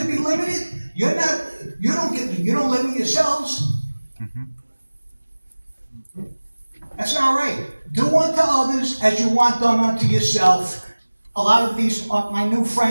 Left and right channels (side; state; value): both; inverted; correlation -1.00